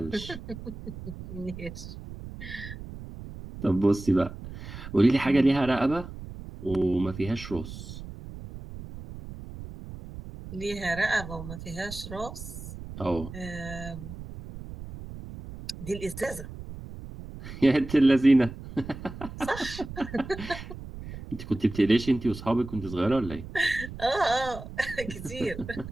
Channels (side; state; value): right; noise; rumble, 12 dB below the sound